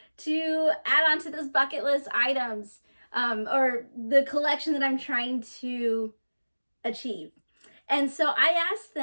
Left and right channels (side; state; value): both; inverted; correlation -1.00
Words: to add on to this bucket list items, or the collection that I'm trying to achieve. And so I asked